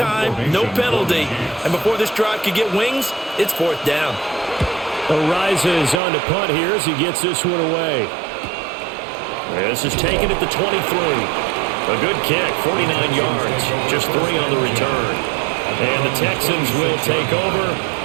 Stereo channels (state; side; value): drops out; left; at 6.0 s